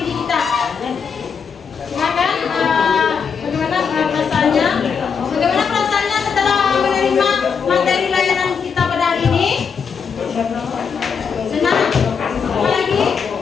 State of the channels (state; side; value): quieter; right; 6.3 dB